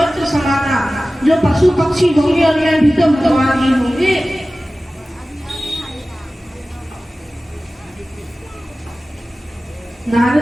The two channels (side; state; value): both; normal; correlation 0.96